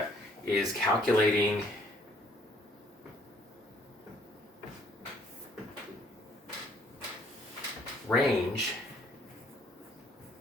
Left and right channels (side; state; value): both; normal; correlation 0.63